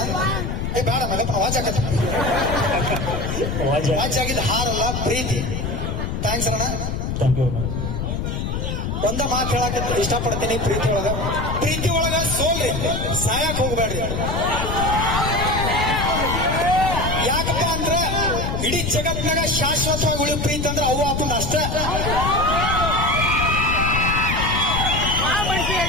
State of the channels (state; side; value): noise; left; rumble, 2 dB below the sound